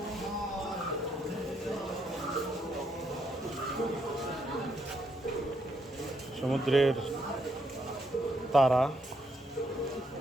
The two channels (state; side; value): normal; both; correlation 0.76